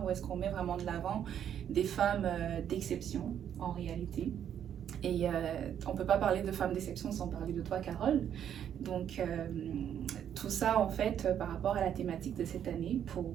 où est-ce qu'on met vraiment de l'avant des femmes d'exception en réalité. Et on ne peut pas parler de femmes d'exception sans parler de toi, Carole. Donc, tout ça, en fait, par rapport à la thématique de cette année, pour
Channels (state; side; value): quieter; left; 9.4 dB